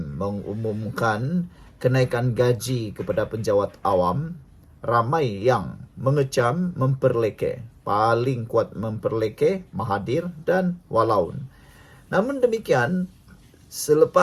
mengumumkan kenaikan gaji kepada penjawat awam, ramai yang mengecam, memperleke. Paling kuat memperleke Mahathir dan Walaun. Namun demikian,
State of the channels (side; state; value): both; identical; correlation 1.00